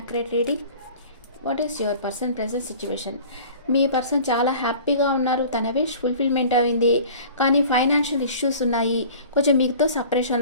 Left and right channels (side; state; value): both; inverted; correlation -0.44